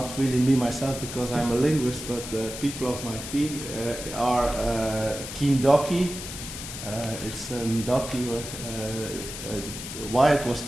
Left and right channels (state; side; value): noise; left; hiss, 9 dB below the sound